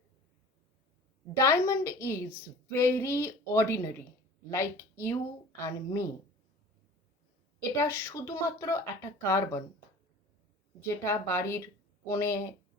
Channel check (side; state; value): both; normal; correlation 0.43